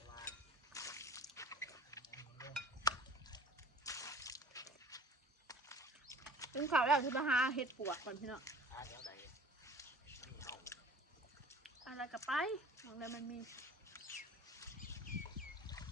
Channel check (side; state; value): both; normal; correlation 0.47